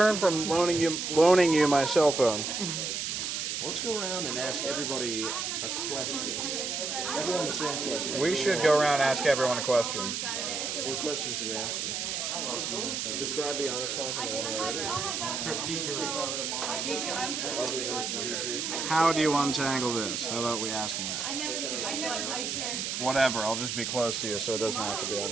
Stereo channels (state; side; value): noise; right; hiss, 2 dB below the sound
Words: from loaning you my cell phone. Let's go around and ask everybody a question. Everyone the same question. We should go around and ask everyone a question. What question should we ask? Describe the honors class in one word. Strategery. Other than strategery. How do you untangle this? How about we ask him that? Whatever. I'll just be close to you so it doesn't have to be